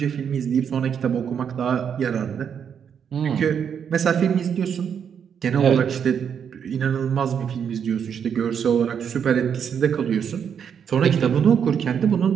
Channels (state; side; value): quieter; left; 7.7 dB